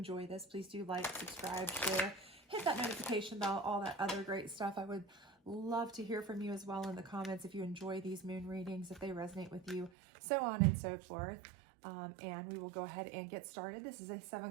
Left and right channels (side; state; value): left; drops out; at 9.9 s